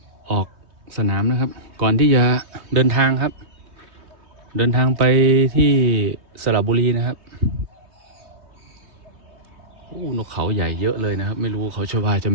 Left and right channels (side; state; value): left; late; 3.2 ms